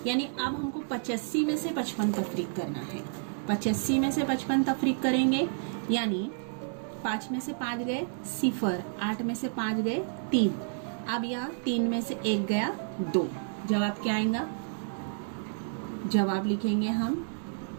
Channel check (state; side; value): silent; left; digital silence